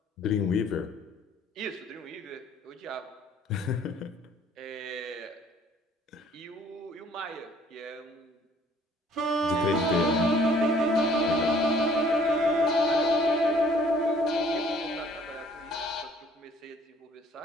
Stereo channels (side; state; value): both; normal; correlation 0.58